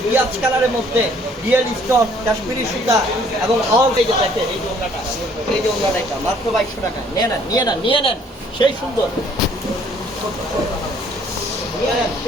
পিয়াজ কালারের মধ্যে রিয়েল স্টোন, কাশ্মীরি সুতা এবং অল। এই যে দেখেন, এই যে ওনাটা, এই যে ওনাটা, এটা মাত্র 2200 টাকা। নিয়ে নেন, নিয়ে নেন, নিয়ে নেন, সেই সুন্দর, নিয়ে নেন,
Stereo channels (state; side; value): normal; both; correlation 0.60